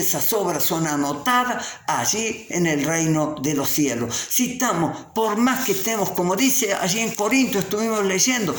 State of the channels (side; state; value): both; identical; correlation 1.00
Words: esas obras son anotadas allí en el reino de los cielos. Si estamos, por más que estemos, como dice allí en Corintios, estuvimos leyendo,